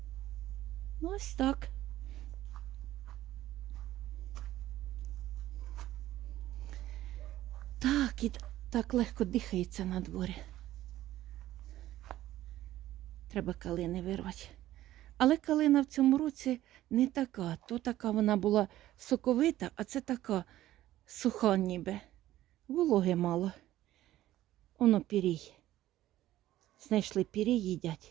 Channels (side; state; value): left; quieter; 14.4 dB